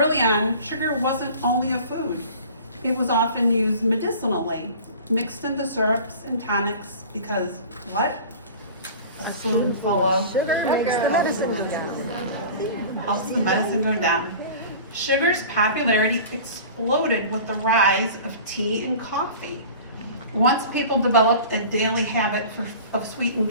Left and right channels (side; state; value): both; inverted; correlation -0.40